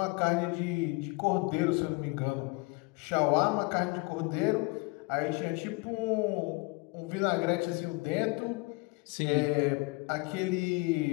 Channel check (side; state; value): right; quieter; 26.8 dB